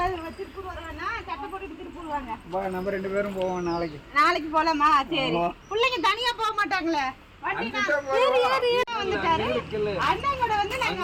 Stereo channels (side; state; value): both; identical; correlation 1.00